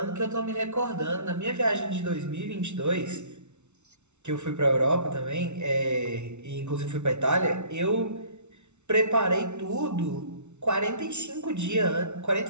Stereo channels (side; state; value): left; late; 0.82 ms